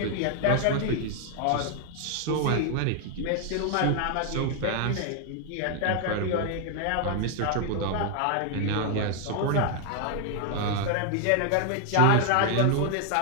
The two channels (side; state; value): both; different; correlation 0.00